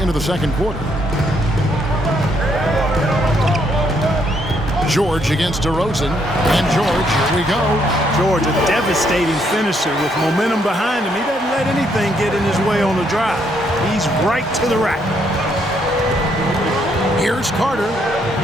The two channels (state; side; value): normal; both; correlation 0.72